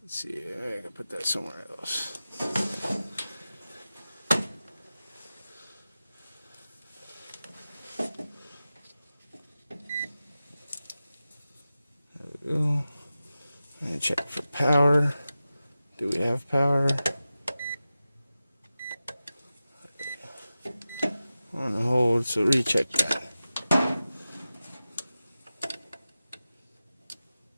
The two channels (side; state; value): both; inverted; correlation -0.94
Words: Let's see, I gotta put that somewhere else. There we go. Let me check for power. Do we have power? On hold, so recheck that.